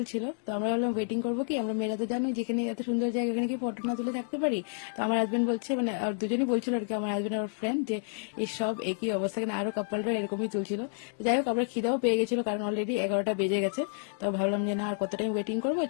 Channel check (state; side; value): silent; right; digital silence